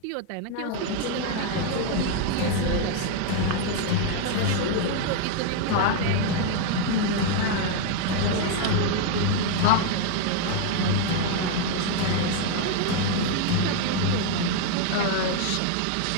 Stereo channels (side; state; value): both; different; correlation 0.00